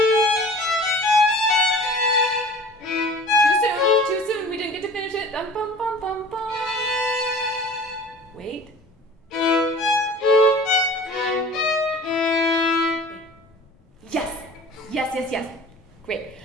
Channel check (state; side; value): normal; both; correlation 0.43